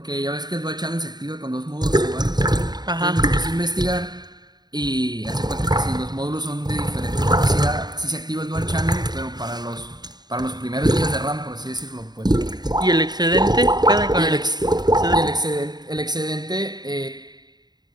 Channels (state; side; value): late; left; 0.20 ms